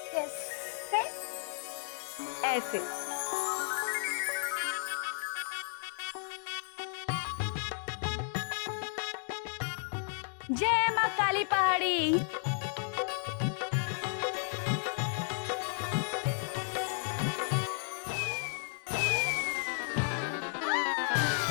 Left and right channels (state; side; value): silent; right; digital silence